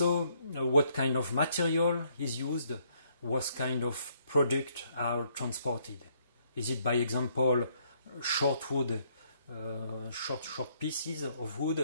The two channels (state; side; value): inverted; both; correlation -0.69